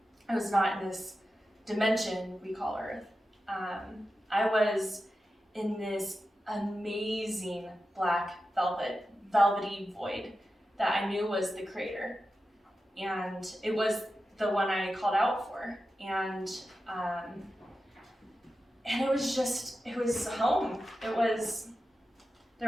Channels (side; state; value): both; normal; correlation 0.92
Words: I was not in this dimension we call Earth. I was in this amazing black velvety void that I knew was the creator. And it was the one I called out for. And it was home.